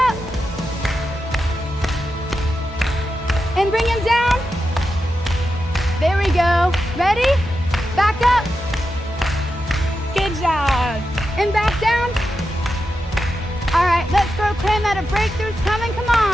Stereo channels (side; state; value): both; normal; correlation 0.89